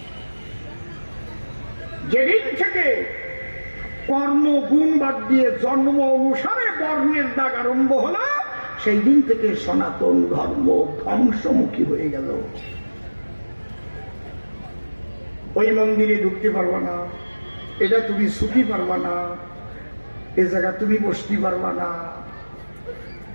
যেদিন থেকে কর্ম গুণ বাদ দিয়ে জন্ম অনুসারে বর্ণের দাগ আরম্ভ হলো, সেই দিন থেকে সনাতন ধর্ম ধ্বংসমুখী হয়ে গেল। ওই মন্দিরে ঢুকতে পারবা না, এটা তুমি ছুটি পারবা না, এ জায়গা তুমি বসতে পারবা না।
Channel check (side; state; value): both; inverted; correlation -1.00